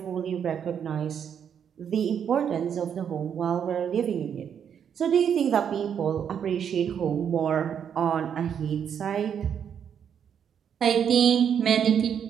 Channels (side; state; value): left; quieter; 8.2 dB